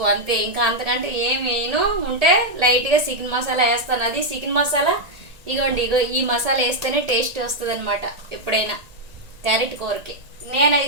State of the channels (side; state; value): left; late; 1.9 ms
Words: అంతే. ఇంకా అంతకంటే ఏం వేయను. ఉంటే లైట్గా చికెన్ మసాలా వేస్తాను. అది చికెన్ మసాలా ఇగో ఈ మసాలా వేస్తేనే టేస్ట్ వస్తుంది అనమాట ఎప్పుడైనా క్యారెట్ కూరకి.